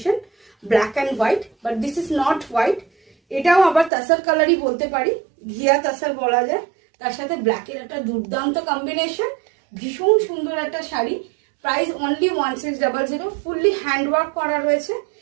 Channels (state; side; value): drops out; left; at 3.9 s